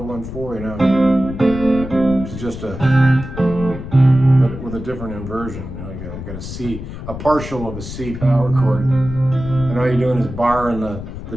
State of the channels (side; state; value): left; noise; rumble, 10 dB below the sound